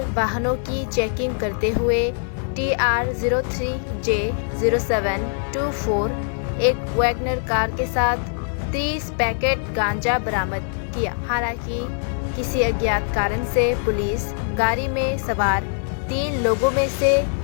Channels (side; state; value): right; silent; 57 dB below the other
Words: वाहनों की चेकिंग करते हुए TR03J0724 एक वैगनर कार के साथ 30 पैकेट गांजा बरामद किया। हालांकि किसी अज्ञात कारण से पुलिस गाड़ी में सवार 3 लोगों में से